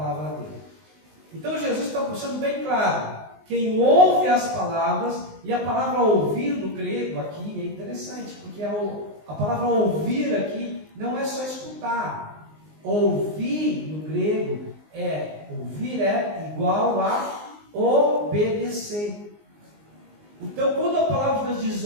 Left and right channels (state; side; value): late; left; 19 ms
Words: dele. Então Jesus está deixando bem claro: quem ouve as palavras, e a palavra ouvir no grego aqui é interessante, porque a palavra ouvir aqui não é só escutar. Ouvir no grego ouvir é igual a obedecer. Então, quando a palavra de Deus diz